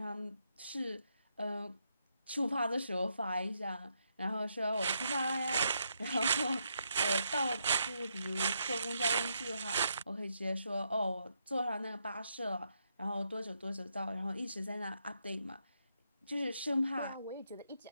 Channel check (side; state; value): both; inverted; correlation -0.79